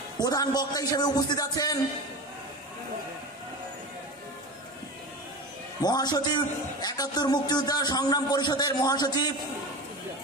প্রধান বক্তা হিসেবে উপস্থিত আছেন মহাসচিব ৭১ মুক্তিযোদ্ধা সংগ্রাম পরিষদের মহাসচিব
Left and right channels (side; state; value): both; normal; correlation 0.28